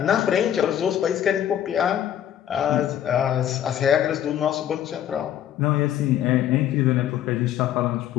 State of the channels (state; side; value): quieter; right; 10.7 dB